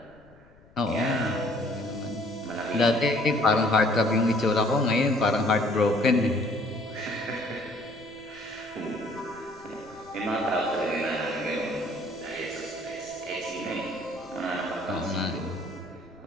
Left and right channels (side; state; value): left; noise; rumble, 27 dB below the sound